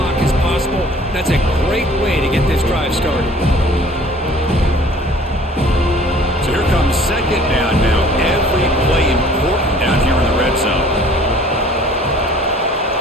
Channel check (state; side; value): normal; both; correlation 0.52